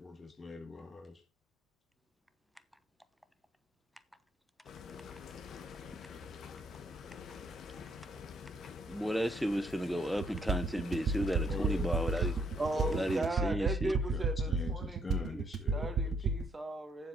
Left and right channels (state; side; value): normal; both; correlation 0.71